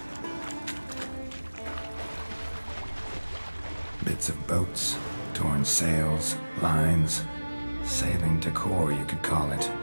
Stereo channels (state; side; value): inverted; both; correlation -1.00